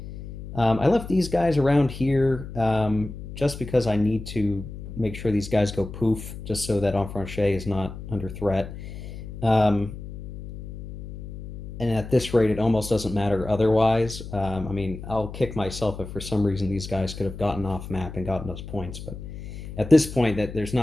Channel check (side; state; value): left; noise; hum, 11 dB below the sound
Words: I left these guys around here just because I need to make sure these guys go poof, just so that Enfranchet is not under threat. Um, and at this rate, it almost doesn't matter otherwise. I mean, I'll kick myself if for some reason these guys could have gotten off map and gotten those points, but at this point, that there's